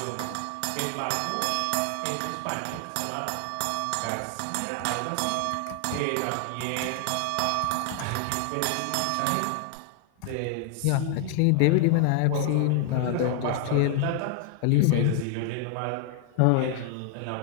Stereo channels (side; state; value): both; different; correlation 0.00